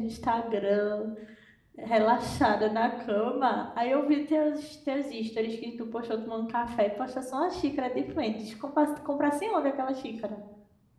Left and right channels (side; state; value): both; identical; correlation 1.00